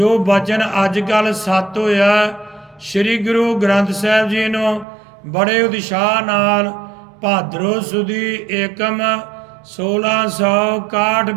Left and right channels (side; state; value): left; drops out; at 4.9 s